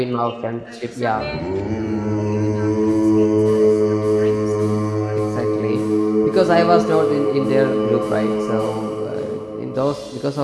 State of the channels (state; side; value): identical; both; correlation 1.00